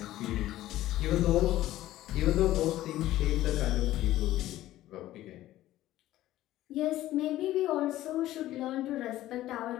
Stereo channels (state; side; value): quieter; right; 14.7 dB